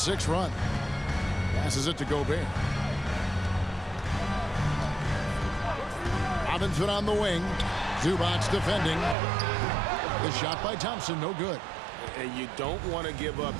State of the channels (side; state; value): left; drops out; at 9.2 s